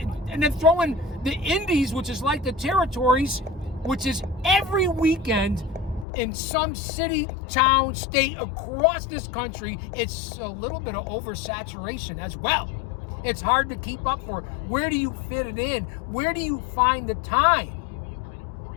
And then throw in the Indies, which is like the territories, which is every weekend in some city, town, state across this country. It's a little bit of oversaturation as well. It's hard to keep up for. Where do you fit it in? Where do you find the time?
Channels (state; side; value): drops out; right; at 6.1 s